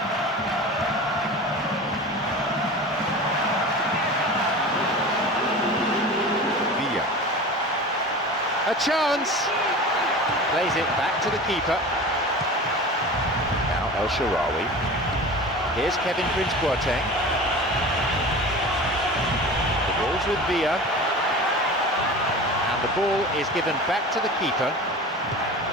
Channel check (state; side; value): normal; both; correlation 0.35